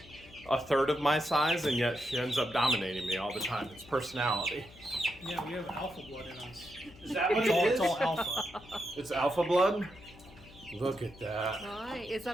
a third of my size, and yet she ends up dominating me all the time. It's personality. Yeah, we have alpha blood in us. Is that what It's all alpha. It's alpha blood? Look at that. Why? Is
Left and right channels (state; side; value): noise; left; hum, 21 dB below the sound